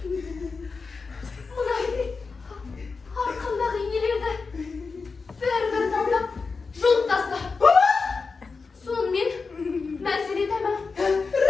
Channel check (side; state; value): right; quieter; 4.6 dB